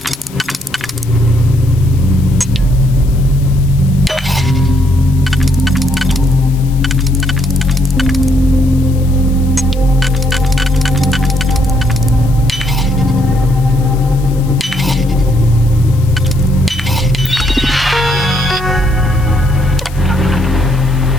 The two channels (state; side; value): noise; left; hiss, 21 dB below the sound